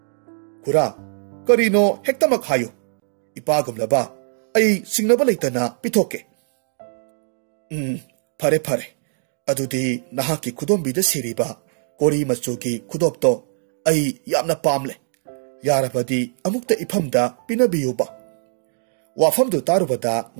khura karino hektamak hayo ipagumlaba ai singnaba leitana pithoke phare phare adudi nahaki khudombida siriba kori machugi khudopto ai yamna pamle yarabadi amukta ifamda pinabiyuba wafamdu tarubada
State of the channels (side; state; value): left; silent; digital silence